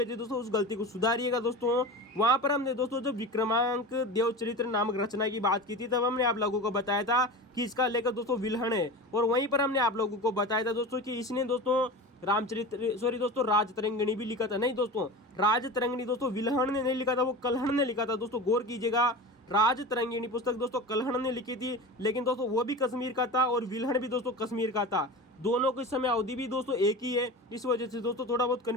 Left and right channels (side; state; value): both; normal; correlation 0.30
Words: थी दोस्तों, उस गलती को सुधारिएगा दोस्तों। वहां पर हमने दोस्तों जो विक्रमांक देवचरित्र नामक रचना की बात की थी, तब हमने आप लोगों को बताया था कि इसका लेखक दोस्तों विल्हण है, और वहीं पर हमने आप लोगों को बताया था दोस्तों कि इसने दोस्तों दोस्तों राजतरंगिणी भी लिखा था। नहीं दोस्तों, राजतरंगिणी दोस्तों विल्हण ने नहीं लिखा था, वो कल्हण ने लिखा था दोस्तों, गौर कीजिएगा। राजतरंगिणी पुस्तक दोस्तों कल्हण ने लिखी थी, लेकिन दोस्तों वो भी कश्मीर का था और विल्हण भी दोस्तों कश्मीर का था। दोनों की समय अवधि भी दोस्तों एक ही है, इस वजह से दोस्तों थोड़ा बहुत